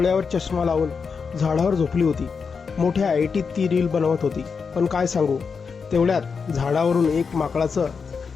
चष्मा लावून झाडावर झोपली होती. मोठ्या ऐटीत ती रील बनवत होती. पण काय सांगू, तेवढ्यात झाडावरून एक माकडाचं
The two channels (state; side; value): quieter; right; 5.5 dB